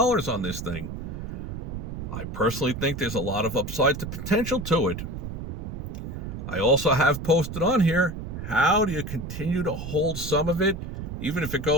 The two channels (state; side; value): noise; right; rumble, 7 dB below the sound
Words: on this thing. I personally think there's a lot of upside to potential to it. I also have posted on here, how do you continue to hold some of it, even if it